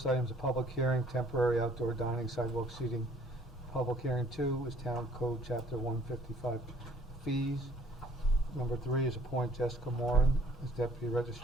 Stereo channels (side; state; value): both; normal; correlation 0.58